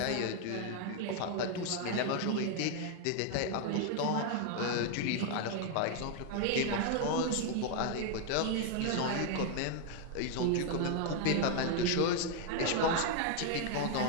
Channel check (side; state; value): both; different; correlation 0.00